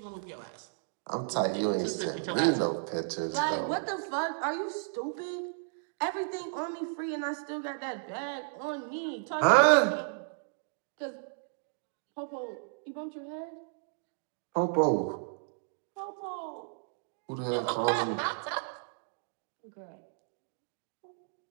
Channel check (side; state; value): left; silent; digital silence